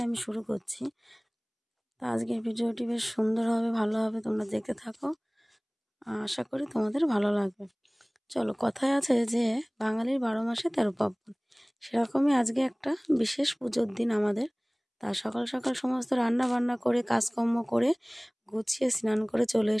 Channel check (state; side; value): identical; both; correlation 1.00